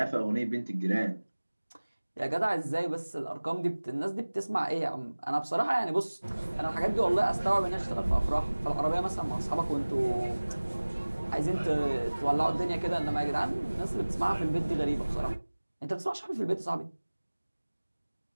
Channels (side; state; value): both; inverted; correlation -1.00